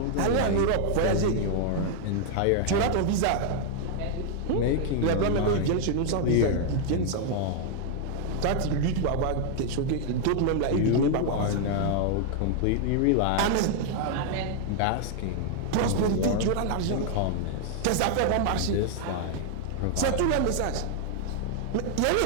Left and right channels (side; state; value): both; different; correlation 0.00